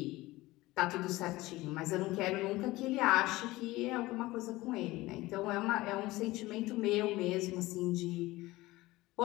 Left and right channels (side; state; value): right; quieter; 19.1 dB